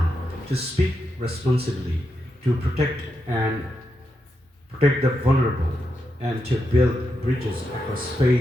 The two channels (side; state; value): both; normal; correlation 0.85